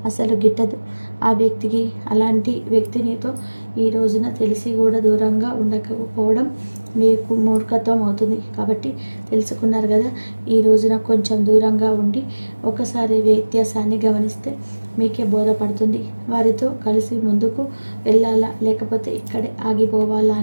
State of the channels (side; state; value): both; inverted; correlation -1.00